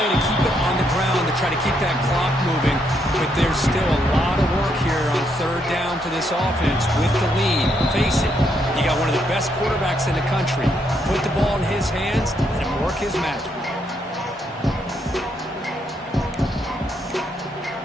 to keep it on the ground, to try to keep that clock moving. But there's still a lot of work here on 3rd down for this offense with the lead. Face it, you got one of the best quarterbacks in the country. Put the ball in his hands and work his magic.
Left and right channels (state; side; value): normal; both; correlation 0.76